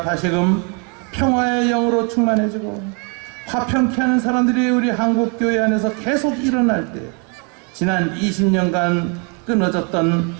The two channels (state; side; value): quieter; left; 35.3 dB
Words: 다시금 평화의 영으로 충만해지고 화평케 하는 사람들이 우리 한국교회 안에서 계속 일어날 때 지난 20년간 끊어졌던